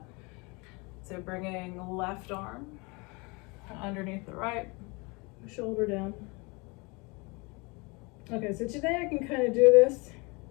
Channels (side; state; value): right; quieter; 27.9 dB